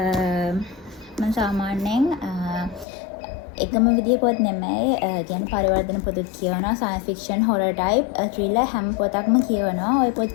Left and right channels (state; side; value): drops out; right; at 2.9 s